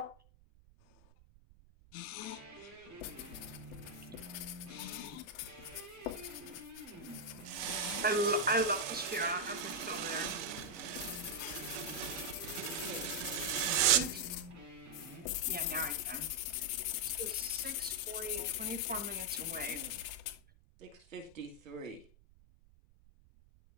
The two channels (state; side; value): noise; right; rumble, 26 dB below the sound